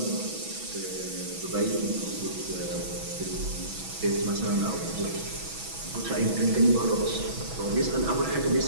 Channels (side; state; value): left; late; 6.1 ms